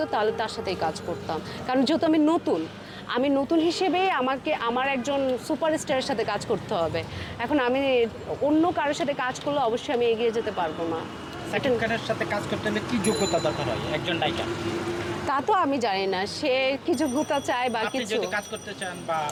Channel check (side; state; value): both; identical; correlation 1.00